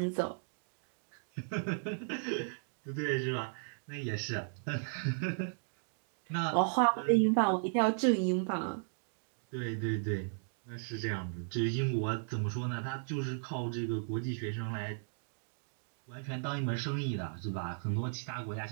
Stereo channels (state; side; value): silent; left; digital silence